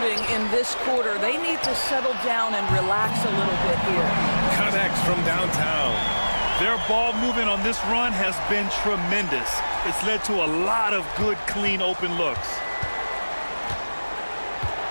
in this quarter. They need to settle down and relax a little bit here. Connects from downtown. Their ball movement on this run has been tremendous. It's led to a lot of good, clean, open looks.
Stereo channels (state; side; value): inverted; both; correlation -1.00